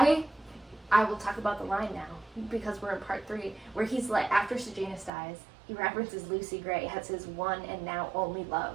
will talk about the line now, because we're in part 3, where he's like, after Sejanus dies, he references Lucy Gray as his one and now only love.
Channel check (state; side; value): drops out; left; at 5.1 s